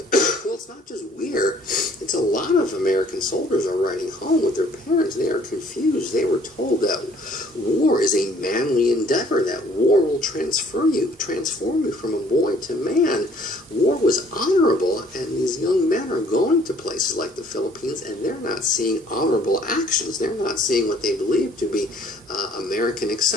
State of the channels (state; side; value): normal; both; correlation 0.59